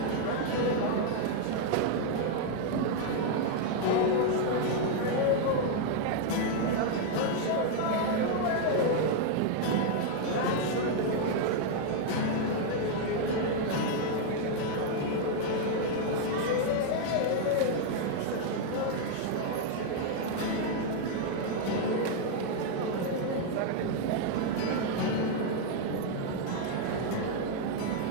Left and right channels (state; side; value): different; both; correlation 0.00